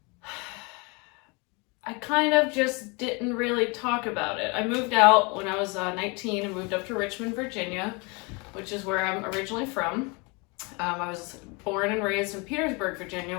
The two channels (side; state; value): right; quieter; 29.5 dB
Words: I kind of just didn't really talk about it. I moved out when I was 19 and moved up to Richmond, Virginia, which is where I'm originally from. I was born and raised in Petersburg, Virginia,